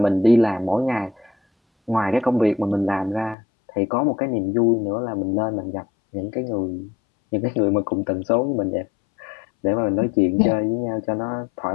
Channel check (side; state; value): right; drops out; at 3.4 s